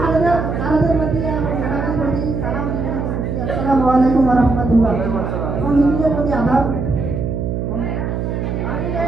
প্রতি এবং ম্যাডামের প্রতি সালাম জানাচ্ছি। আসসালামু আলাইকুম ওয়া রাহমাতুল্লাহ। এবং হিন্দুদের প্রতি আদাব।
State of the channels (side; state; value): right; noise; hum, 2 dB below the sound